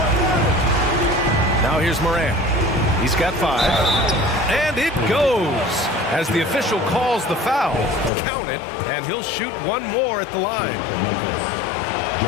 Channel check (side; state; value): right; drops out; at 8.1 s